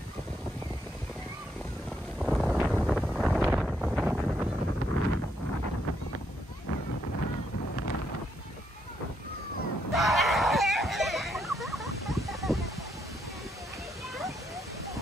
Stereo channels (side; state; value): both; normal; correlation 0.76